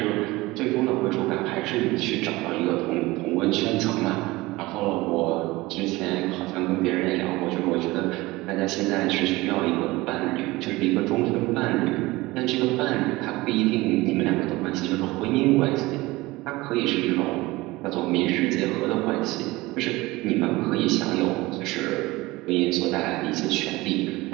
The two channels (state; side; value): quieter; left; 20.5 dB